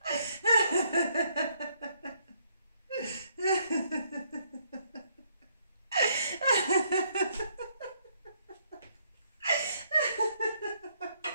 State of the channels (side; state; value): both; inverted; correlation -0.70